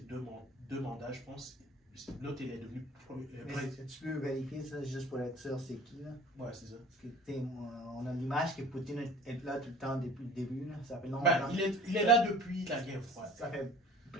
deux mandats, je pense, l'autre, il est devenu Mais président. tu peux vérifier ça juste pour être sûr c'est qui, là? Ouais, c'est ça. Parce que, tu sais, on a l'image que Poutine est là tout le temps depuis le début, là. Ça fait longtemps. Ben, il est là depuis la guerre froide. Ça fait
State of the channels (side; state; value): both; normal; correlation 0.45